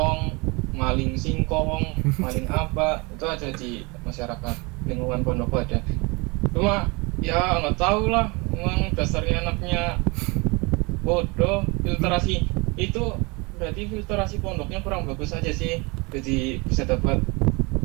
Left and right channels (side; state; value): left; quieter; 27.6 dB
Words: maling singkong, maling apa, itu ada di masyarakat lingkungan Ponorogo ada. Cuma ya nggak tahu lah, memang dasarnya anaknya bodoh. Filtrasi itu berarti filtrasi pondoknya kurang bagus aja sih, jadi bisa dapat